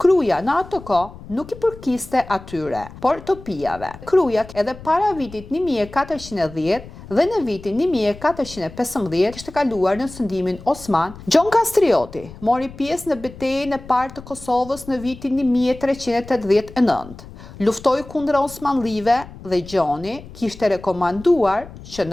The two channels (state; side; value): noise; left; rumble, 17 dB below the sound